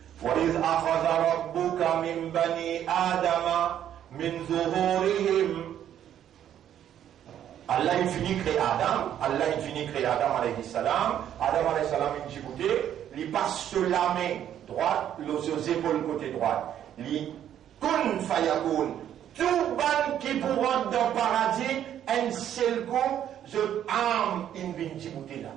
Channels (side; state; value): left; quieter; 10.4 dB